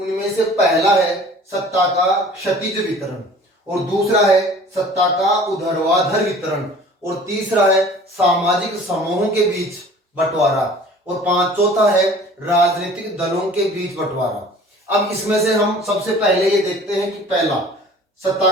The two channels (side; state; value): both; normal; correlation 0.47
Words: से पहला है सत्ता का क्षैतिज वितरण, और दूसरा है सत्ता का ऊर्ध्वाधर वितरण, और तीसरा है सामाजिक समूहों के बीच बंटवारा, और चौथा है राजनीतिक दलों के बीच बंटवारा। अब इसमें से हम सबसे पहले ये देखते हैं कि पहला